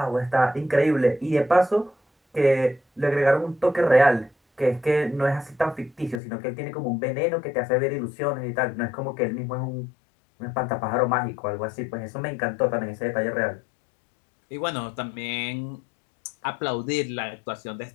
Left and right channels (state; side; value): drops out; right; at 6.2 s